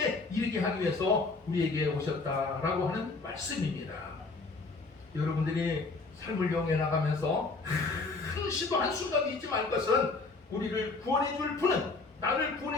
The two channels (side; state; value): right; quieter; 3.8 dB